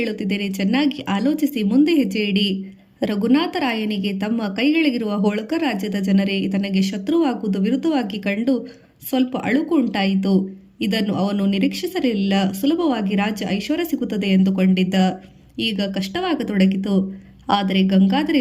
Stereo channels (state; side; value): identical; both; correlation 1.00